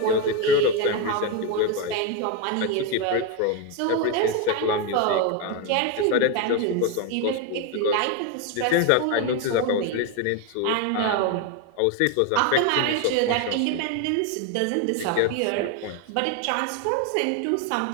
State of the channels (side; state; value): both; different; correlation 0.02